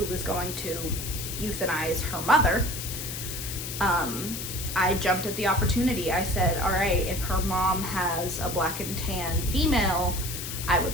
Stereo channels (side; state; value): left; noise; hiss, 6 dB below the sound